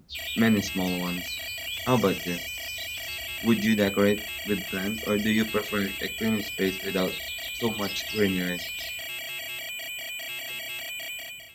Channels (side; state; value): both; identical; correlation 1.00